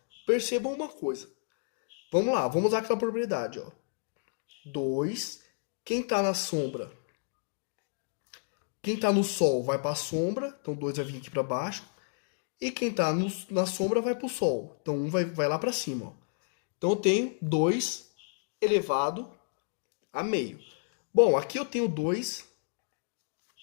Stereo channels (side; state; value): right; silent; digital silence